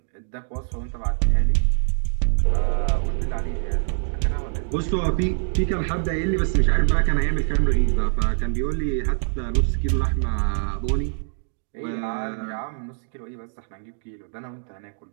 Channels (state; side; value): silent; left; 63 dB below the other